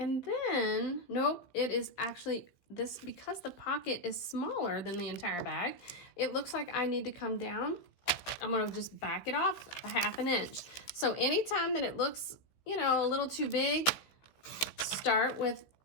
then, nope, it is actually this, because the pocket is smaller than the entire bag, it looks like I need to come down. I'm gonna just back it off a 1/2 inch. So anytime that it looks, you know, a little too big, start with,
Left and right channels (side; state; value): right; late; 16 ms